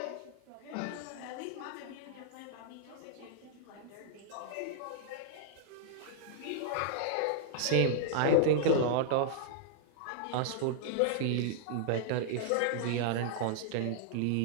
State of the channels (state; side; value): different; both; correlation -0.01